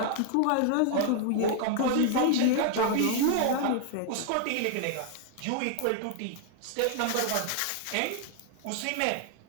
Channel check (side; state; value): both; different; correlation 0.00